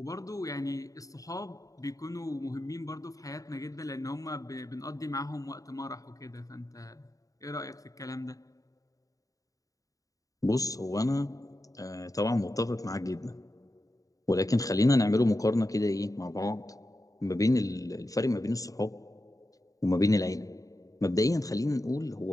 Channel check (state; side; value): late; right; 0.17 ms